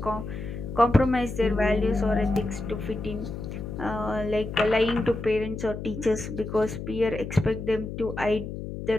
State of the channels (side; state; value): left; noise; hum, 8 dB below the sound